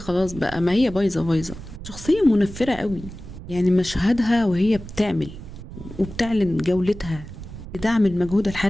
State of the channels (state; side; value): noise; right; rumble, 13 dB below the sound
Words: بقى، ما هي بايظة بايظة. شخصية منفرة قوي، يعني مشهدها وهي بتعمل وبتعلن جولتها لدعم المجهود